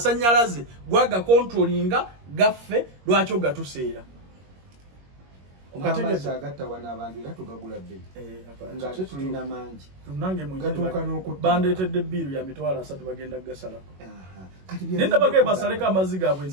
gwaga controllinga gaffe lwaki ogatuseera. Amazzi agatta wana abantu era tugagula bbiri. Nga ate tulina mangi. Nange gatuuka n'okutta. Bandeetedde bbiiru ya mitwalo 3 bagenda gasalako. Nenda bagee basaleko amazzi gaabwe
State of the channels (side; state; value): left; late; 21 ms